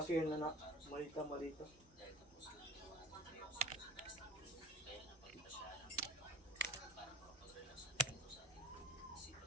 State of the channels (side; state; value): both; normal; correlation 0.36